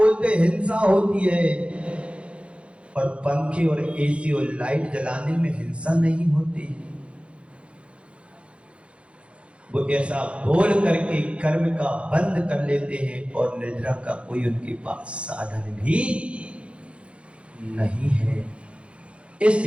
हिंसा होती है, और पंखे और एसी और लाइट जलाने में हिंसा नहीं होती। वो ऐसा बोल करके कर्म का बंद कर लेते हैं, और निद्रा का कोई उनके पास साधन भी नहीं है।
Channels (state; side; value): late; left; 0.060 ms